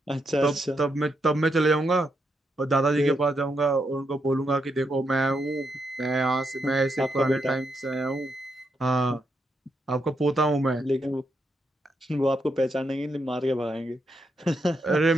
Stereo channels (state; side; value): normal; both; correlation 0.81